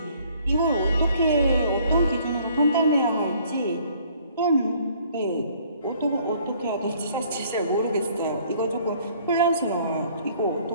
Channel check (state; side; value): inverted; both; correlation -0.59